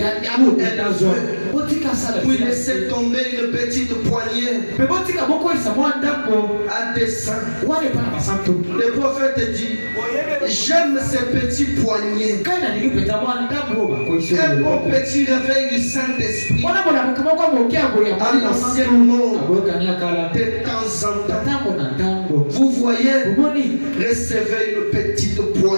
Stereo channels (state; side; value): inverted; both; correlation -1.00